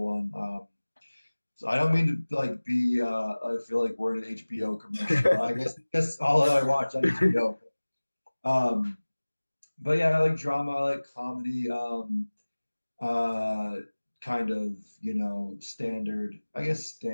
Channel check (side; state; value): both; inverted; correlation -1.00